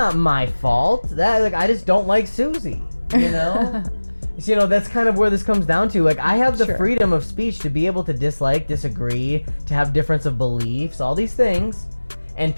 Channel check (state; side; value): inverted; both; correlation -1.00